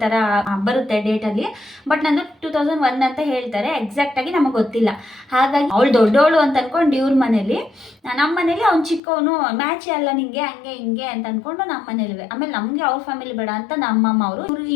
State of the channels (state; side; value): drops out; right; at 9.0 s